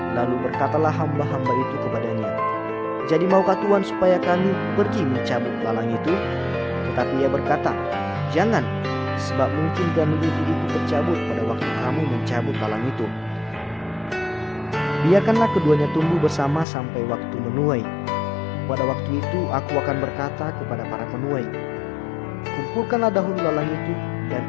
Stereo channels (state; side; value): drops out; right; at 16.7 s